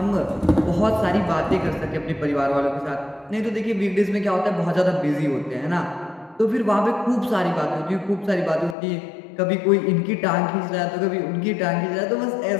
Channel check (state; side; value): drops out; right; at 8.8 s